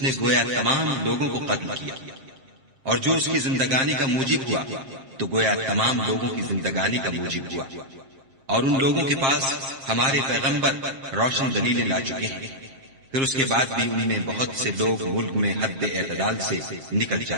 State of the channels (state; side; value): late; left; 7.5 ms